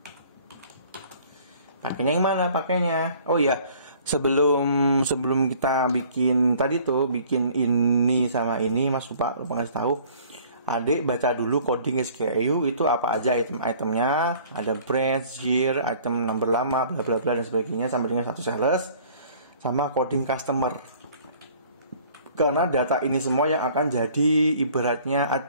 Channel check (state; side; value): inverted; both; correlation -0.53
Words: Pakainya yang mana pakainya? Oh iya, sebelum kita bikin tadi tuh, bikin ini sama ini, Mas lupa ngasih tahu. Adik baca dulu coding SKU itu apa aja item-itemnya, ada branch, year, item number lama, bla bla bla dan sebagainya sampai dengan satu sales, sama coding customer. Karena data ini semua yang akan jadi ibaratnya